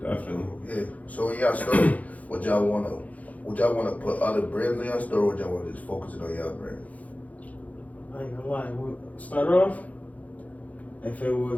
definitely. Yeah. So in y'all store, would y'all wanna put other brands in y'all store, or would y'all wanna just focus it on y'all brand? I ain't gonna lie. We'll start off. If it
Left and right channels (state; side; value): late; right; 0.072 ms